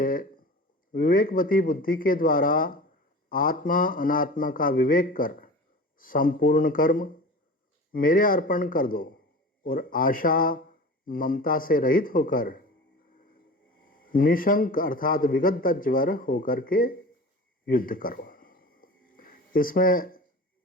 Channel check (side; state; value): both; normal; correlation 0.35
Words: विवेकवती बुद्धि के द्वारा आत्मा अनात्मा का विवेक कर संपूर्ण कर्म मेरे अर्पण कर दो और आशा ममता से रहित होकर निशंक अर्थात विगत ज्वर होकर के युद्ध करो। इसमें